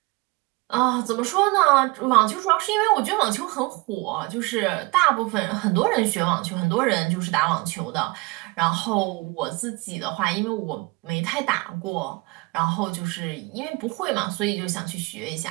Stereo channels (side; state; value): left; quieter; 24.7 dB